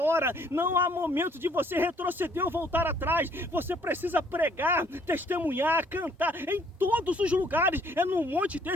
Não há momento de você retroceder ou voltar atrás. Você precisa pregar, testemunhar, cantar em todos os lugares. É num monte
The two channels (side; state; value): both; normal; correlation 0.63